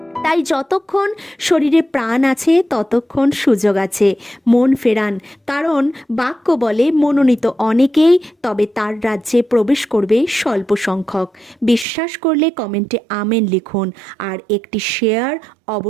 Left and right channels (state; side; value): drops out; left; at 11.9 s